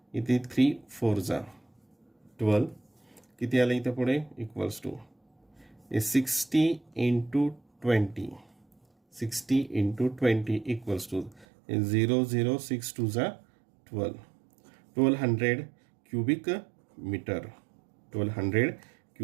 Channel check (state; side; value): drops out; left; at 11.5 s